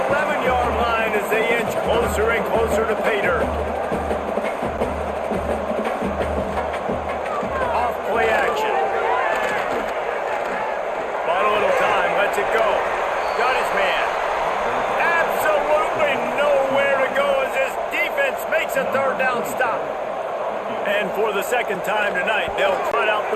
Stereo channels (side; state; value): both; identical; correlation 1.00